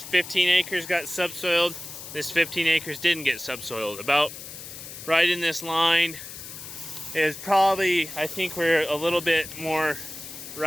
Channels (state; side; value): noise; left; hiss, 12 dB below the sound